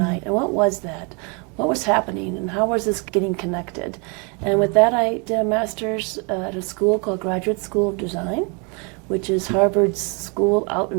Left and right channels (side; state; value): left; quieter; 33.6 dB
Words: And what was that? What was happening, and how was this getting connected? And with that, I did a master's at a school called Graduate School of Design, which is Harvard's school out